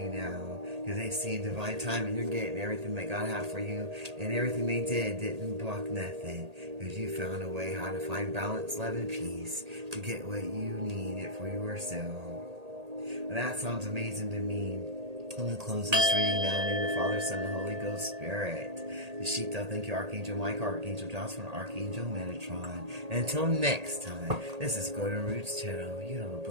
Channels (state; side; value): late; left; 1.8 ms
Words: now. Because they see in divine time and you're getting everything that God had for you. And everything they did didn't block nothing. Because you found a way how to find balance, love, and peace to get what you needed for yourself. Well, that sounds amazing to me. I'm going to close this reading now in the name of the Father, Son, and Holy Ghost Spirit. The Shita, thank you, Archangel Michael, Archangel Jocelyn, Archangel Metatron. And until next time, this is Golden Roots Tarot. You have a